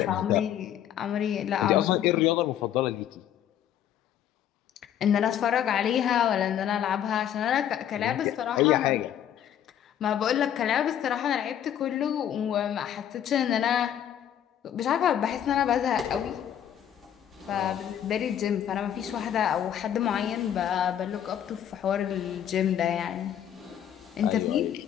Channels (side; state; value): right; quieter; 10.1 dB